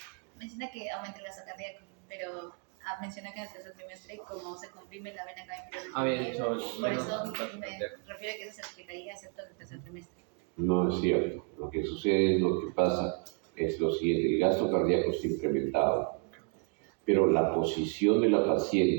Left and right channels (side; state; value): left; quieter; 37.2 dB